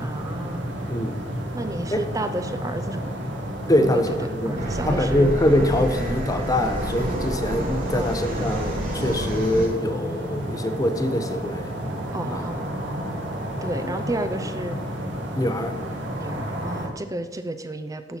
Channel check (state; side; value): normal; both; correlation 0.70